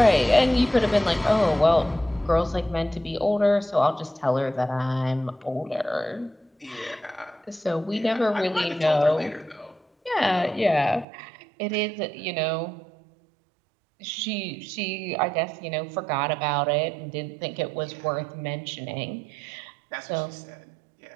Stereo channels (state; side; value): drops out; left; at 11.1 s